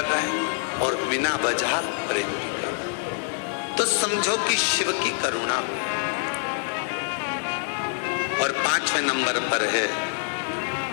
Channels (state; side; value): silent; right; 61 dB below the other